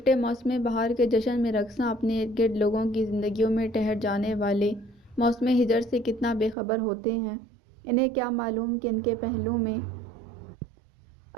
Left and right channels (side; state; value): left; drops out; at 6.6 s